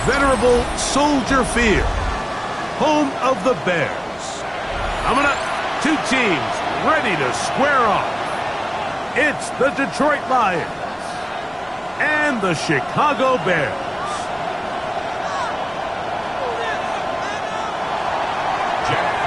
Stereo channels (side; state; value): both; identical; correlation 1.00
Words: venerable Soldier Field, home of the Bears. Coming up, two teams ready to square off. It's the Detroit Lions and the Chicago Bears.